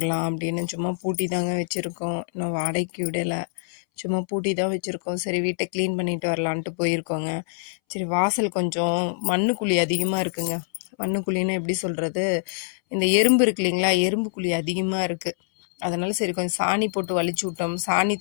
அப்படின்னு சும்மா பூட்டி தாங்க வச்சுருக்கோம். இன்னும் வாடகைக்கு விடலை, சும்மா பூட்டி தான் வச்சுருக்கோம். சரி, வீட்டை க்ளீன் பண்ணிட்டு வரலான்ட்டு போயிருக்கோங்க. சரி, வாசல் கொஞ்சம் மண்ணுக்குழி அதிகமாக இருக்குங்க. மண்ணுக்குழின்னு எப்படி சொல்கிறது, இந்த எறும்பு இருக்கு இல்லைங்களா, எறும்பு குழி அதிகமாக இருக்குது. அதனால சரி கொஞ்சம் சாணி போட்டு வலிச்சு விட்டோம், சாணி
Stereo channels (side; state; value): right; silent; 62 dB below the other